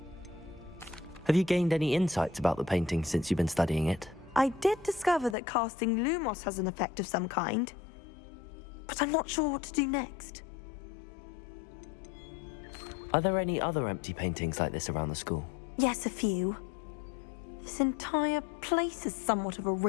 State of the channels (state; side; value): drops out; right; at 5.4 s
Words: Have you gained any insights about the painting since you've been studying it? I did discover that casting Lumos has an effect of some kind. But I'm not sure what to do next. Are there any other empty paintings like this around the school? Yes, a few. This entire place is somewhat of a